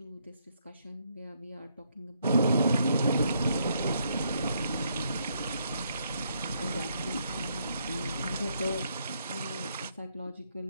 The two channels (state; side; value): inverted; both; correlation -0.74